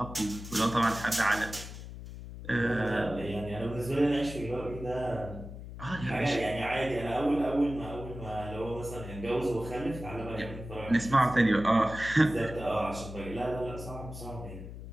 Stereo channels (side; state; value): left; noise; hum, 11 dB below the sound